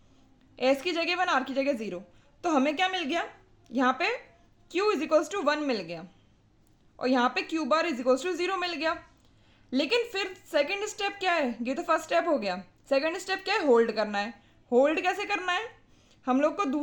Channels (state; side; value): identical; both; correlation 1.00